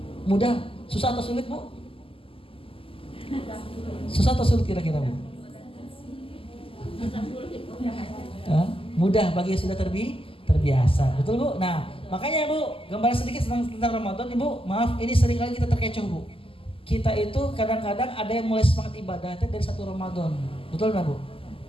Mudah, susah atau sulit Bu? Susah atau sulit kira-kira Bu? Mudah bagi yang sudah terbiasa. Betul Bu? Nah, makanya Bu, gambaran sedikit tentang Ramadan Ibu. Maaf, ini seringkali kita terkecoh Bu. Kita itu kadang-kadang ada yang mulai semangat ibadahnya dari 1 Ramadan. Betul nggak Bu?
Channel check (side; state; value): right; late; 0.26 ms